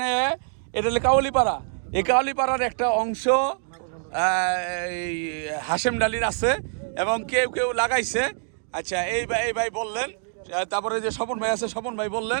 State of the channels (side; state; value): left; silent; digital silence